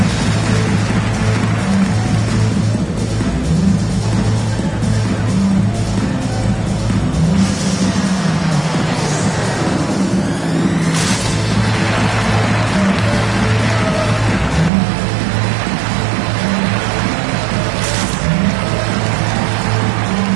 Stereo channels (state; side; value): drops out; left; at 14.7 s